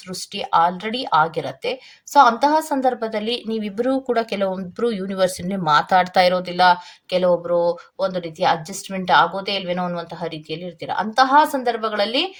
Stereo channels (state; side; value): identical; both; correlation 1.00